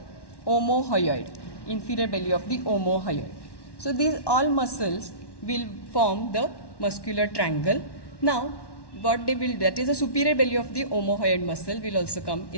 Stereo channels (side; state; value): right; late; 1.1 ms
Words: omohyoid, inferior belly of the omohyoid. So these all muscles will form the muscular triangle. Now what they will, that is the superior belly of the omohyoid muscle will also come